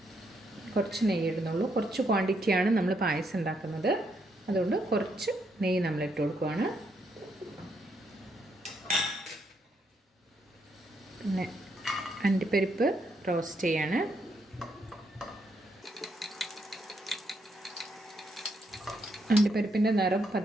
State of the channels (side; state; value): both; normal; correlation 0.76